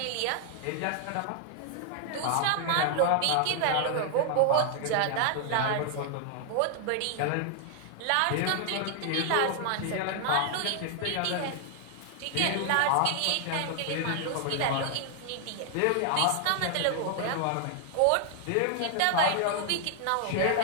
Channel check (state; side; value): different; both; correlation 0.00